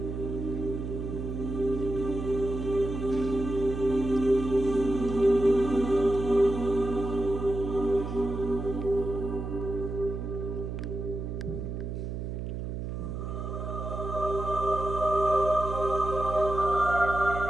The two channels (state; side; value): noise; right; hum, 5 dB below the sound